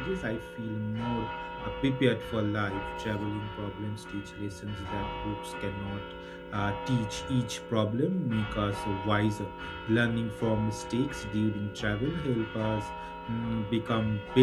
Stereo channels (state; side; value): identical; both; correlation 1.00